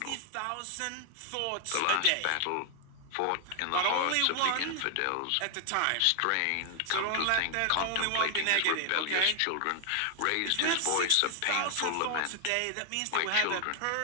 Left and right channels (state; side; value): different; both; correlation 0.00